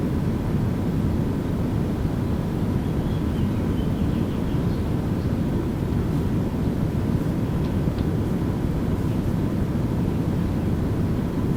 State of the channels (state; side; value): identical; both; correlation 1.00